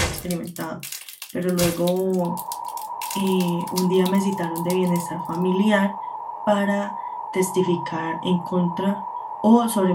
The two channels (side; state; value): both; identical; correlation 1.00